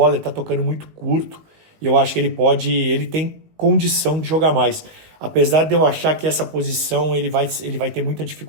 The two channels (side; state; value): left; late; 19 ms